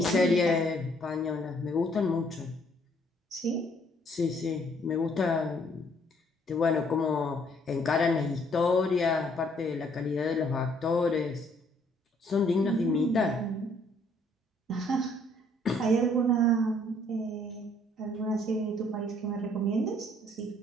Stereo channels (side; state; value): both; normal; correlation 0.64